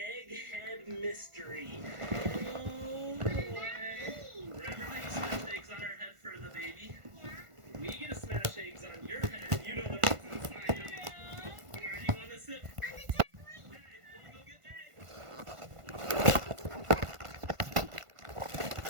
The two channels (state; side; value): late; left; 1.5 ms